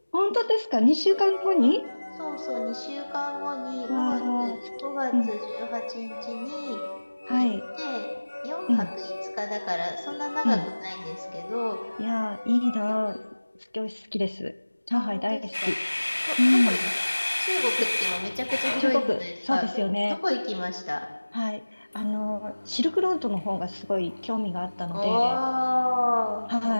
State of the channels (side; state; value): both; inverted; correlation -1.00